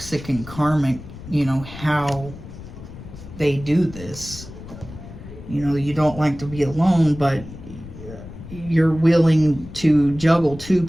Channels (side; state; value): left; noise; rumble, 14 dB below the sound